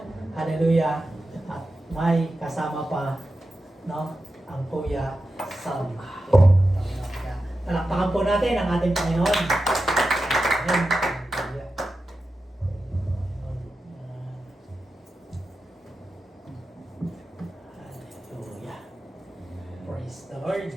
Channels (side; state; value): both; normal; correlation 0.91